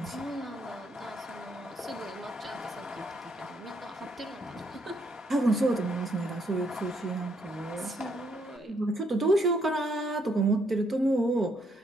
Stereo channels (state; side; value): normal; both; correlation 0.72